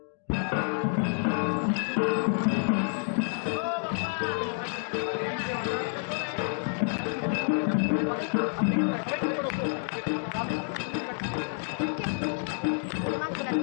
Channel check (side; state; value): right; silent; 59 dB below the other